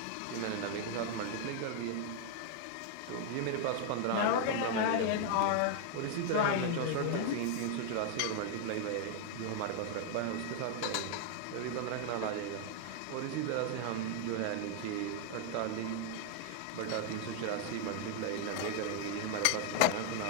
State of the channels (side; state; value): both; different; correlation 0.00